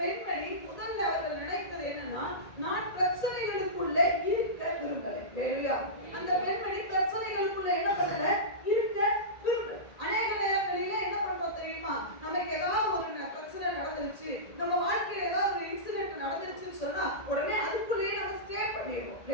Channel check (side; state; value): right; late; 1.8 ms